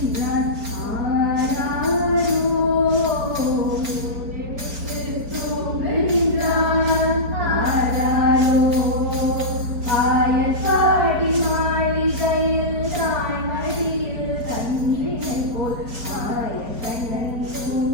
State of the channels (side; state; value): left; late; 4.3 ms